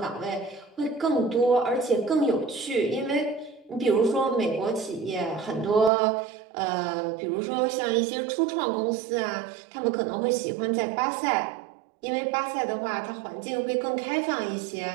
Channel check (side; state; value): left; drops out; at 5.9 s